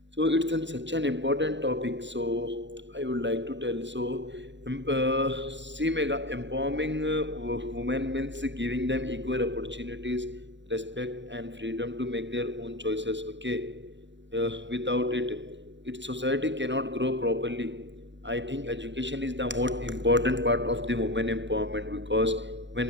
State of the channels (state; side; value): late; left; 0.53 ms